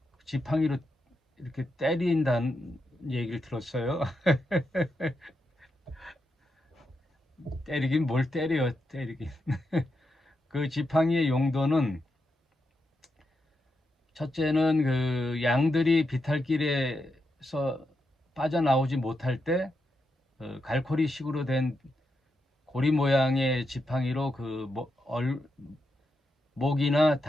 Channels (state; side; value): normal; both; correlation 0.85